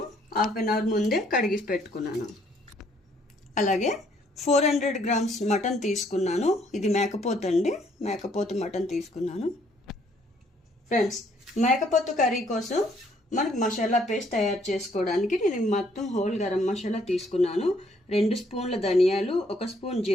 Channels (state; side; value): normal; both; correlation 0.66